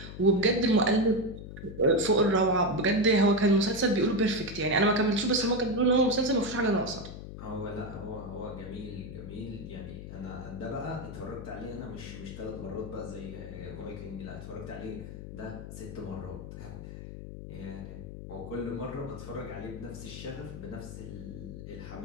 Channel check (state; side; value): noise; left; hum, 10 dB below the sound